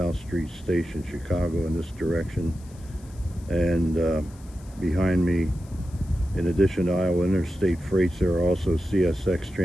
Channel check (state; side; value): noise; left; hiss, 26 dB below the sound